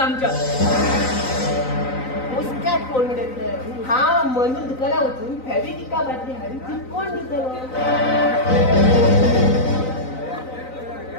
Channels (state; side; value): late; right; 3.9 ms